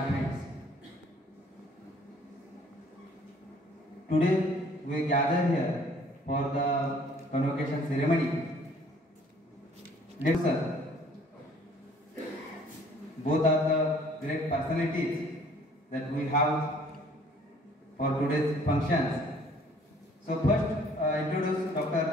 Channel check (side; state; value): both; normal; correlation 0.57